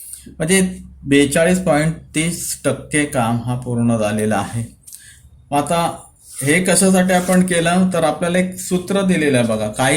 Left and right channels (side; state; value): both; identical; correlation 1.00